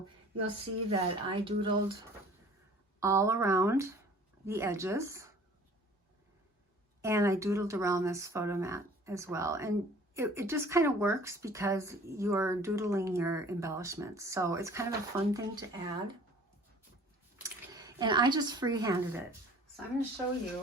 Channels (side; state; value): both; normal; correlation 0.50